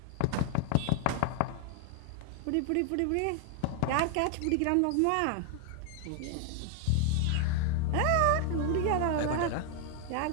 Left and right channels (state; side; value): different; both; correlation 0.00